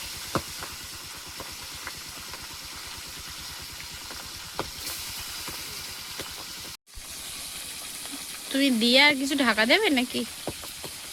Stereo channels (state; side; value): identical; both; correlation 1.00